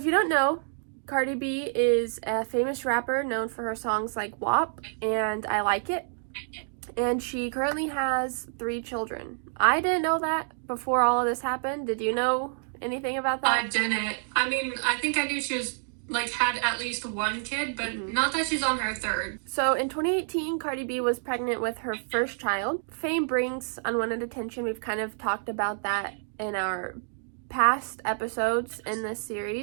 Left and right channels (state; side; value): silent; left; digital silence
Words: you don't know, Cardi B is a famous rapper known for her songs like WAP and I Like It. And she currently has 3 children. I didn't know that before all of this happened. Did you know anything about that? I didn't. I mean, I think I knew she was, had at least 1 kid, but not that she's on her 3rd. So in 2018, Cardi B was pregnant with her first child. Fame brings unwanted attention. We've kind of talked about that in our past episodes in this